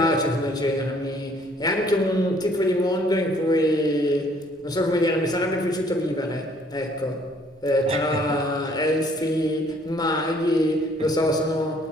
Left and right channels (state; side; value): normal; both; correlation 0.61